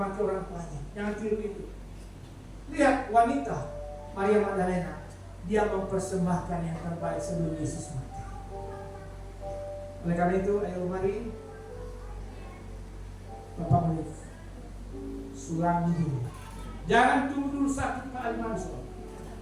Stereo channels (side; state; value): both; identical; correlation 1.00